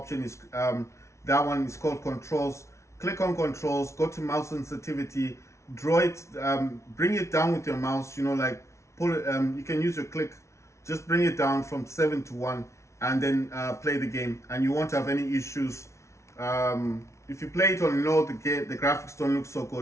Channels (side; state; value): right; late; 0.13 ms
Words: is that one is called controls. Click on controls, go to mouse sensitivity, draw it, bring it down with your mouse, you know, like pull it, you can use your click, just bring it down from 7 to 1, and then play the game, and you won't have any issues. If you play it on low, the graphics don't look so